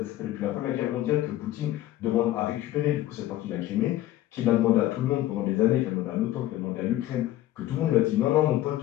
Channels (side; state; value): right; quieter; 14.4 dB